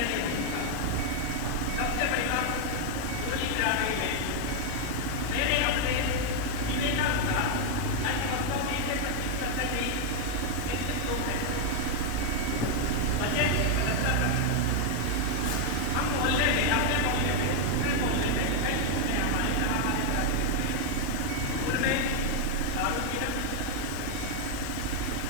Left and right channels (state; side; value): different; both; correlation 0.00